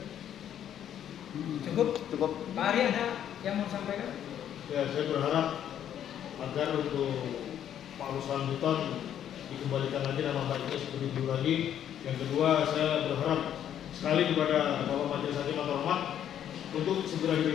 Cukup. Pak Ari ada yang mau sampaikan? Ya, saya berharap agar untuk Pak Ruslan Buton dikembalikan lagi nama baiknya seperti dulu lagi. Yang kedua, saya berharap sekali kepada Bapak Majelis Hakim yang terhormat untuk segera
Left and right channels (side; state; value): right; quieter; 10.1 dB